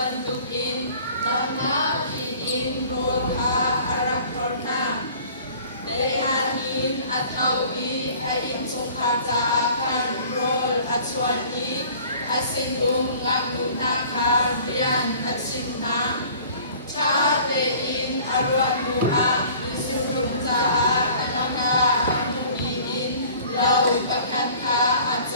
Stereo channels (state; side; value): inverted; both; correlation -0.49